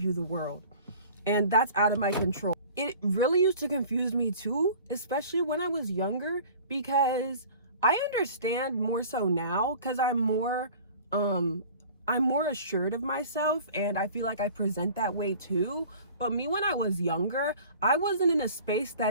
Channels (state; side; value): inverted; both; correlation -0.45